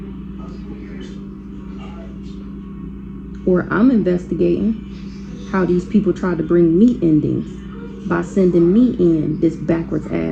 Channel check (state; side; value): identical; both; correlation 1.00